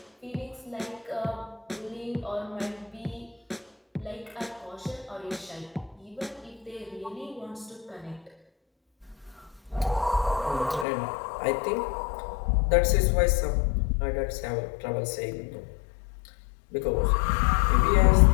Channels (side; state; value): right; drops out; at 10.9 s